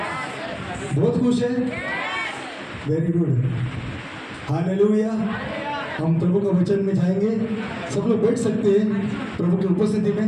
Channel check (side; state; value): both; identical; correlation 1.00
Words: बहुत खुश हैं? Very good. हालेलुया। हम प्रभु का वचन में जाएंगे। सब लोग बैठ सकते हैं प्रभु की उपस्थिति